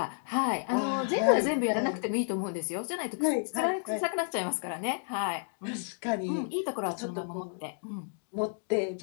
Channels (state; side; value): silent; right; digital silence